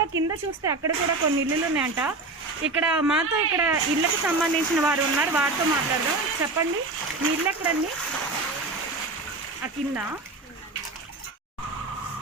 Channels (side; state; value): left; quieter; 3.3 dB